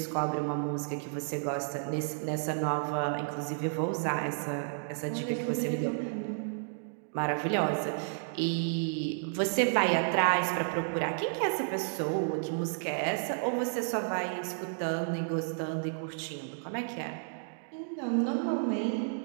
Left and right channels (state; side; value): silent; left; digital silence